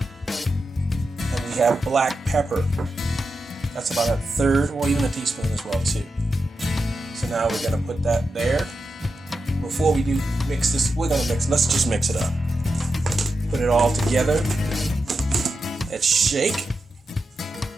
And we have black pepper, that's about a third or even a teaspoon as well too. So now we're gonna put that there. Before we do mix this, let's just mix it up. Put it all together. Let's shake.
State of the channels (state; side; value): normal; both; correlation 0.89